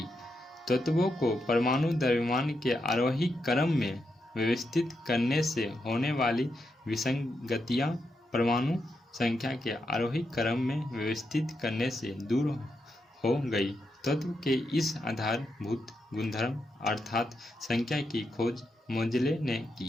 तत्वों को परमाणु द्रव्यमान के आरोही क्रम में व्यवस्थित करने से होने वाली विसंगतियां परमाणु संख्या के आरोही क्रम में व्यवस्थित करने से दूर हो गई। तत्व के इस आधारभूत गुणधर्म अर्थात संख्या की खोज मोजले ने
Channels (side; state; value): both; normal; correlation 0.84